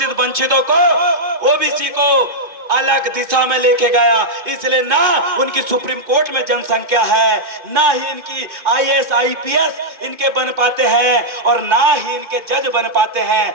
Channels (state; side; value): late; left; 2.4 ms